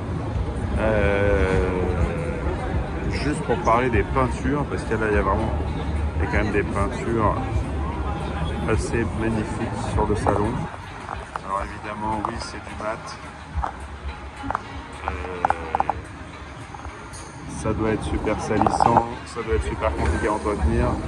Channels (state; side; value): identical; both; correlation 1.00